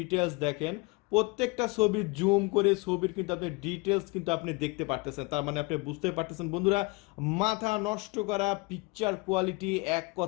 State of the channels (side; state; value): right; quieter; 26.7 dB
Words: দেখেন, প্রত্যেকটা ছবি জুম করে ছবির কিন্তু আপনি ডিটেলস কিন্তু আপনি দেখতে পারতেছেন। তার মানে আপনি বুঝতে পারতেছেন বন্ধুরা, মাথা নষ্ট করা পিকচার কোয়ালিটি, এক